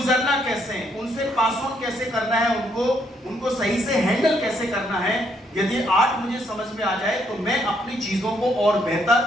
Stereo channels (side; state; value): both; normal; correlation 0.72